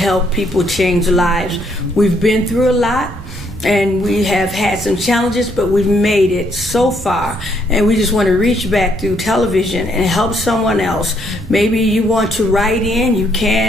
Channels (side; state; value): both; normal; correlation 0.71